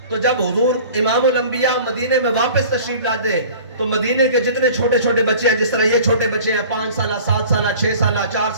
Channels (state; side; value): inverted; both; correlation -0.45